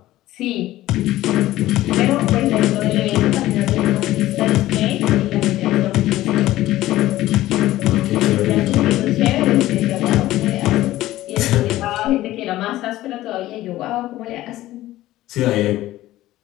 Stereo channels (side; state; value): right; quieter; 15.6 dB